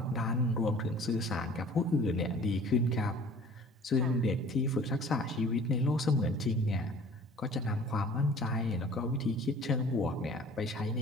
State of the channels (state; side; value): normal; both; correlation 0.48